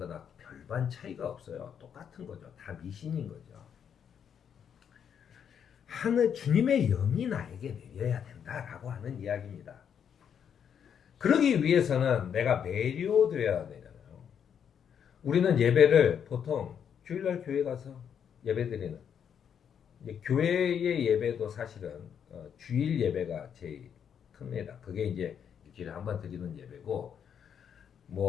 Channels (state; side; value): quieter; right; 8.1 dB